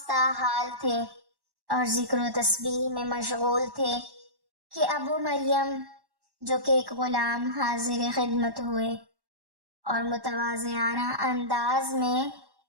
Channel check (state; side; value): late; left; 1.1 ms